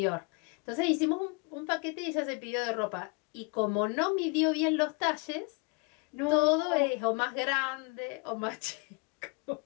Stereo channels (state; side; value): quieter; right; 31.8 dB